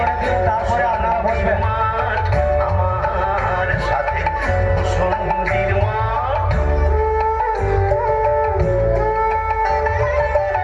দিন, তারপরে আপনারা বসবেন। মাঠ, আমার সাথে ভূষণ্ডির মাঠ।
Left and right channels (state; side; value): identical; both; correlation 1.00